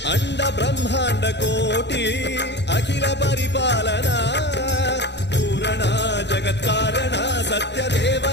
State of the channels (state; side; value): late; right; 0.50 ms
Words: अंड ब्रह्मांड कोटि अखिल परिपालना पूरणा जगत्कारणा सत्य देव